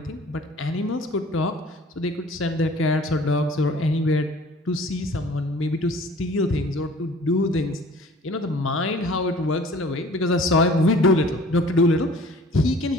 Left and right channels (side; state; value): both; normal; correlation 0.49